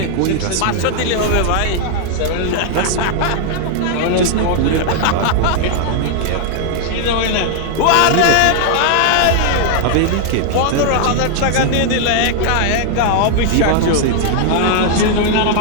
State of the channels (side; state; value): both; different; correlation 0.00